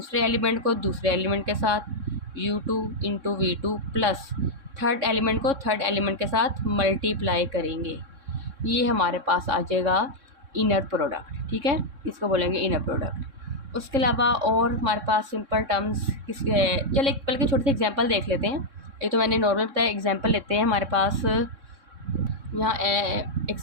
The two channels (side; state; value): left; late; 3.6 ms